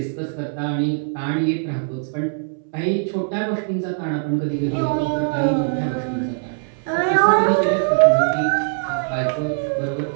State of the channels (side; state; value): left; silent; 65 dB below the other